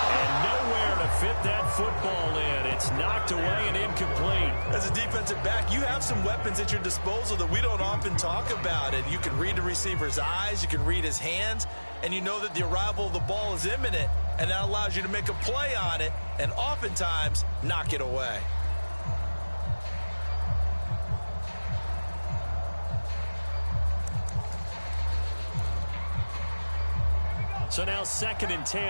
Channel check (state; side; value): inverted; both; correlation -1.00